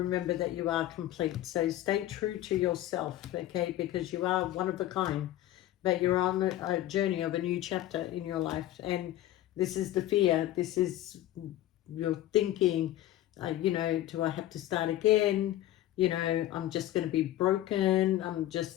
that you are complete. So stay true to yourself, okay, because you are one of a kind, but you're on a journey of a new chapter in your life. And this is the fear. This is your thinking, do I have to start again? I'm just going to be broken. I'm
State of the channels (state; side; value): quieter; right; 13.9 dB